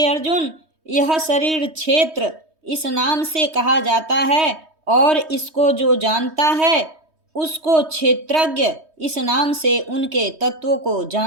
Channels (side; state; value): left; late; 3.2 ms